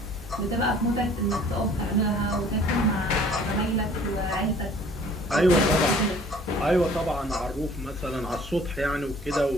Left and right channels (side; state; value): both; normal; correlation 0.52